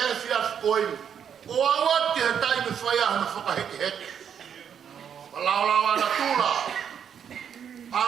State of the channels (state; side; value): quieter; left; 8.1 dB